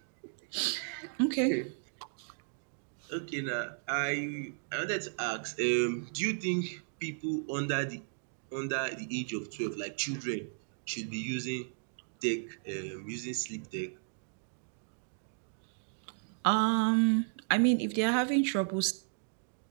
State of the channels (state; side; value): silent; left; digital silence